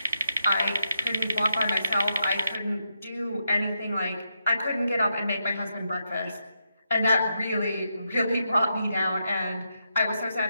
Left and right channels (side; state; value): both; inverted; correlation -0.83